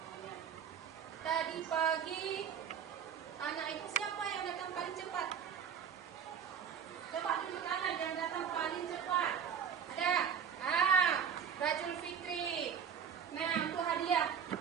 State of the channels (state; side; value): quieter; left; 7.7 dB